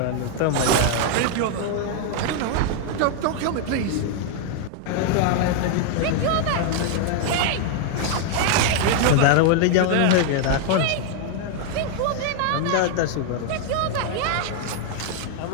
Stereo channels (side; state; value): both; different; correlation 0.00